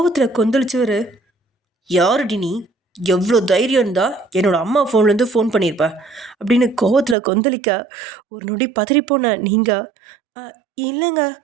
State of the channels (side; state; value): left; drops out; at 7.2 s